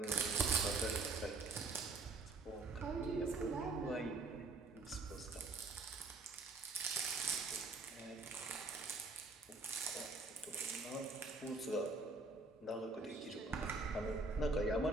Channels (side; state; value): left; quieter; 3.4 dB